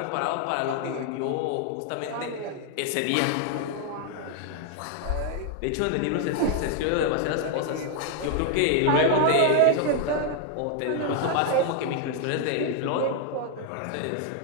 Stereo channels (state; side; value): different; both; correlation 0.00